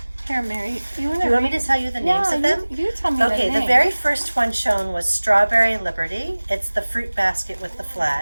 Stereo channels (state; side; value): inverted; both; correlation -1.00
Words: Here, Mary, Do you want me to tell you the names of them? You tell me Okay, the the name. very first one shown was Strawberry Liberty. It's the fruit basket with the